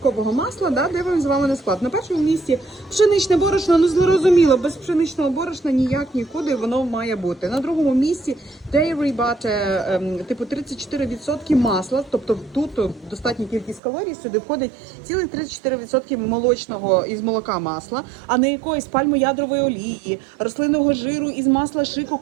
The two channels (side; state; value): left; drops out; at 13.8 s